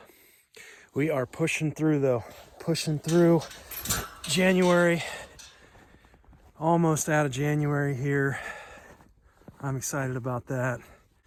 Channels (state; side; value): identical; both; correlation 1.00